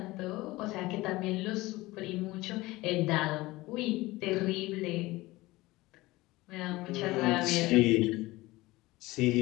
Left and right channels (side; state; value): right; quieter; 19.8 dB